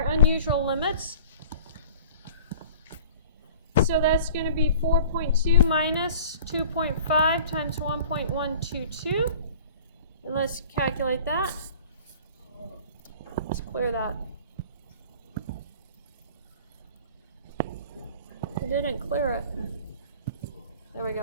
unusual limits. So that's going to be 4.2 minus 2.5 times 1.122. And let's calculate that. Let's clear that. It didn't clear it. There we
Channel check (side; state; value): both; inverted; correlation -0.47